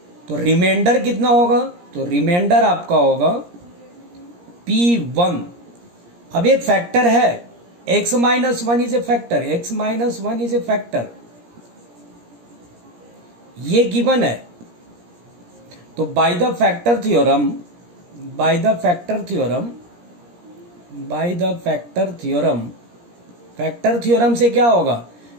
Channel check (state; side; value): late; left; 17 ms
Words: तो रिमाइंडर कितना होगा, तो रिमाइंडर आपका होगा P1। अब एक फैक्टर है, x-1 is a factor, x-1 is a factor, ये गिवन है। तो by the factor theorem, factor theorem से क्या होगा,